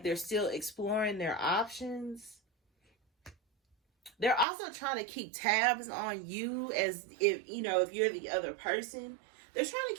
they're still exploring their options. They're also trying to keep tabs on you, as if you're the other person. They're trying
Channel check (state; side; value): drops out; left; at 4.5 s